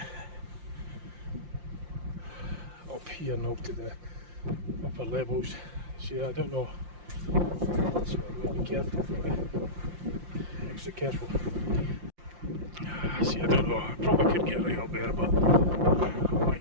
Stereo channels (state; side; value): late; left; 5.7 ms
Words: up here now to the upper levels. So I don't know. So I'm going to be careful. Extra careful. See, I don't know. I probably could get right up there, but I